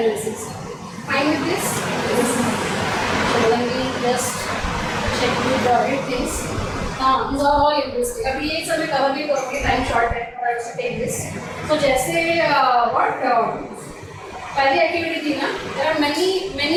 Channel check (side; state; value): both; identical; correlation 1.00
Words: Fine with this? So let me just check with the things. हाँ, these are all interesting. अभी ये सब मैं कवर भी करूँगी, टाइम शॉर्ट है, और आई टेक दिस। तो जैसे व्हाट पहली एक्टिविटी थी ना, there are